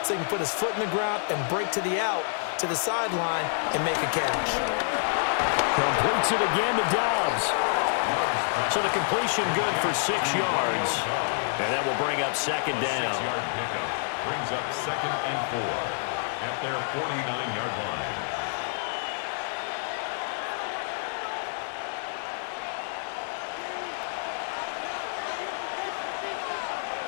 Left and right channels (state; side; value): silent; right; digital silence